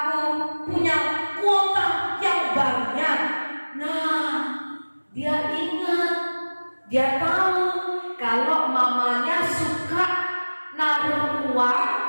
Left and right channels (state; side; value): inverted; both; correlation -1.00